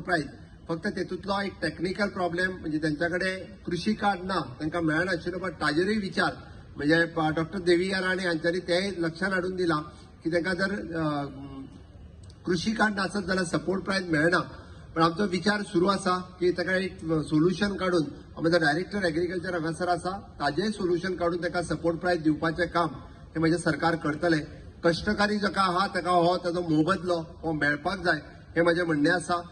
प्रायस फक्त तेतूंतलो एक टेक्निकल प्रॉब्लेम म्हणजे त्यांच्या कडेन कृषी कार्ड ना तांकां मेळनाशिल्लो. बट ताजेरूय विचार म्हणजे डॉक्टर देविया राणे हांच्यांनी तेय लक्षांत हाडून दिला की तांकां जर कृषी कार्ड नासत जाल्यार सपोर्ट प्रायस मेळना. पण आमचो विचार सुरू आसा की ताका एक सोल्युशन काढून आमचो डायरेक्टर एग्रीकल्चर हांगासर आसा ताजेय सोल्युशन काढून ताका सपोर्ट प्रायस दिवपाचें काम हे म्हणजे सरकार करतले. कष्टकारी जाका आहा ताका हो ताजो मोबदलो हो मेळपाक जाय हे म्हजें म्हणणें आसा.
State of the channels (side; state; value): both; identical; correlation 1.00